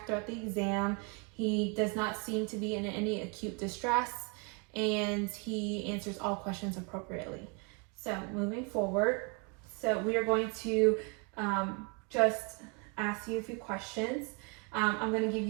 throughout the exam. He does not seem to be in any acute distress, and he answers all questions appropriately. So moving forward, so we are going to just ask you a few questions. I'm going to give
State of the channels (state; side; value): quieter; left; 34.3 dB